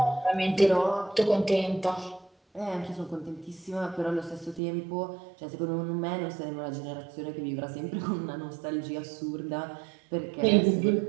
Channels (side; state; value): left; drops out; at 4.6 s